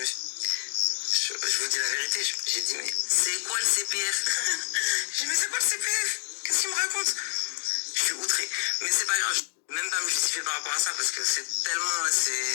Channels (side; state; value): right; silent; digital silence